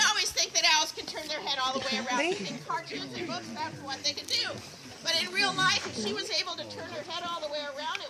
always think that owls can turn their head all the way around. In cartoons and books, that's what they can do. But in real life, if she was able to turn her head all the way around,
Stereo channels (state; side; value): identical; both; correlation 1.00